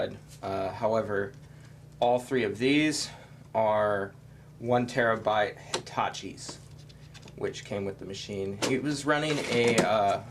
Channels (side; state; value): both; identical; correlation 1.00